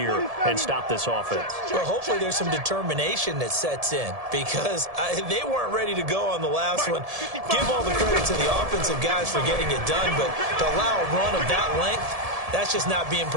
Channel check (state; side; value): late; left; 1.7 ms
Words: and stop this offense? Well, hopefully there's some determination that sets in because they weren't ready to go on the last one. Give all the credit to the offensive guys for getting it done, but to allow a run of that length, that's just not being